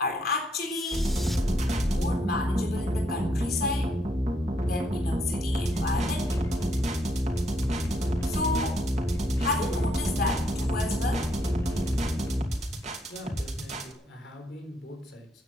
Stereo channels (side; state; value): both; normal; correlation 0.74